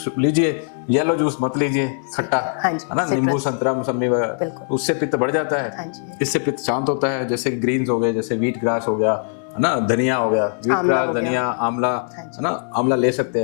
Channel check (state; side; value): silent; right; 62 dB below the other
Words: लीजिए, येलो जूस मत लीजिए, खट्टा है ना, नींबू संतरा मौसमी वगैरह, उससे पित्त बढ़ जाता है। इससे पित्त शांत होता है। जैसे ग्रीन्स हो गए, जैसे व्हीट ग्रास हो गया, है ना, धनिया हो गया, व्हीट ग्रास, धनिया, आंवला, है ना, आंवला ले सकते